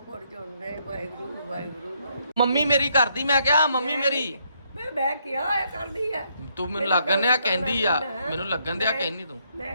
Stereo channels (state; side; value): inverted; both; correlation -0.73